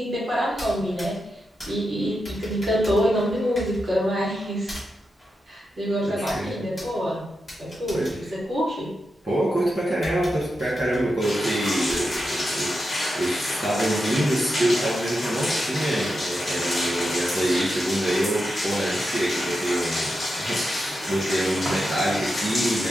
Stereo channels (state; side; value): normal; both; correlation 0.88